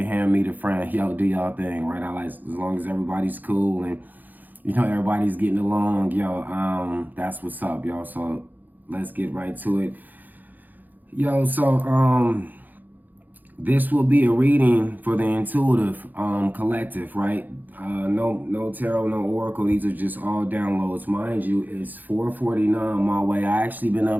hand, meet a friend. Yo, do y'all thing, right? I like, as long as everybody's cool and, everybody's getting along, yo, that's what's up, y'all. So let's get right to it. Yo, so, this will be a reading for the intuitive collective, right? No tarot, no oracle. These are just all downloads. Mind you, it's 4:49 my way. I actually been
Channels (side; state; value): left; late; 0.085 ms